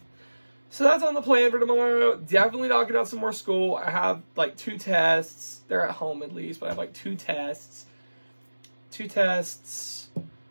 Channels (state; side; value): inverted; both; correlation -1.00